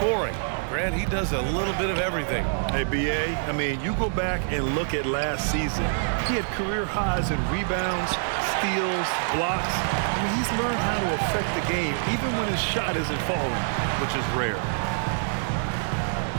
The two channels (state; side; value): silent; left; digital silence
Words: Grant, he does a little bit of everything. Hey, B.A., I mean, you go back and look at last season. He had career highs in rebounds, steals, blocks. I mean, he's learned how to affect the game, even when his shot isn't falling, which is rare.